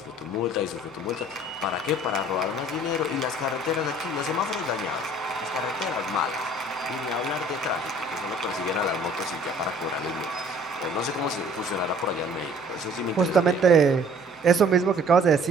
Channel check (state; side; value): noise; left; hum, 30 dB below the sound